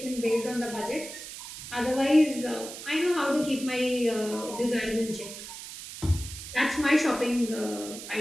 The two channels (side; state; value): right; noise; hiss, 11 dB below the sound